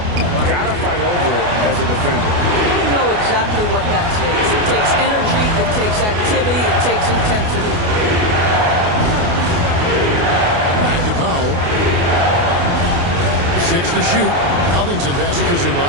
Got to fight over it as a defender. You know exactly what that takes. It takes energy, it takes activity, it takes intensity. Back to Powell. 6 to shoot. Covington passes to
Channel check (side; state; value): left; late; 29 ms